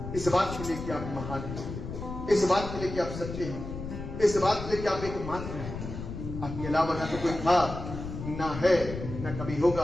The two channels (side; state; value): left; noise; rumble, 8 dB below the sound